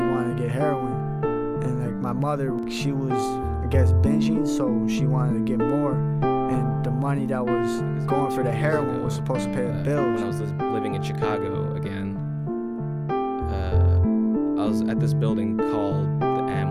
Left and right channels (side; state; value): both; identical; correlation 1.00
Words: wanted to get heroin. And like my mother, she was, I guess, binging, so she wanted to get more. And the money that was going for the heroin was supposed to pay the bills. When I was living in Chicago again, I was at this building called the